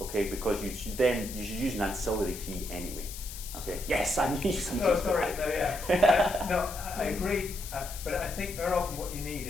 Because you should use an ancillary key anyway. Okay. Yes, I need something. No, sorry. No, yeah. No, I agree. But I think very often what you need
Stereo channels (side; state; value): left; noise; hiss, 11 dB below the sound